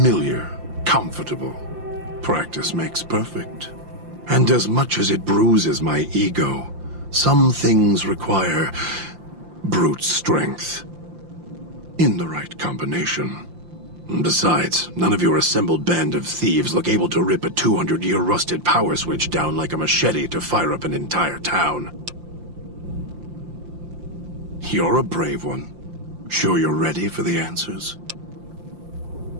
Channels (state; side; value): late; left; 5.7 ms